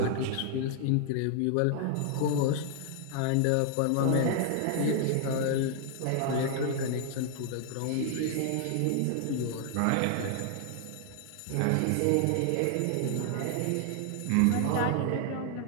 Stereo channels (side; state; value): both; different; correlation 0.00